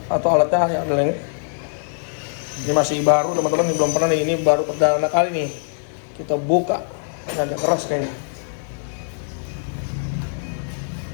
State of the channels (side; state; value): right; silent; digital silence